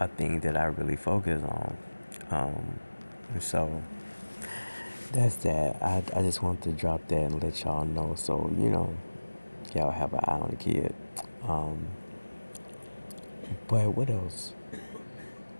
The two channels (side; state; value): both; inverted; correlation -1.00